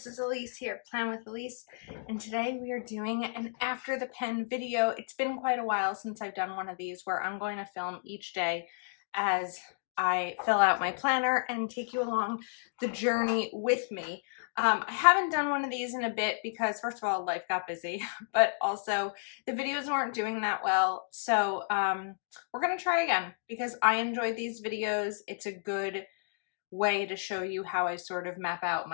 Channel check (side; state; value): right; silent; digital silence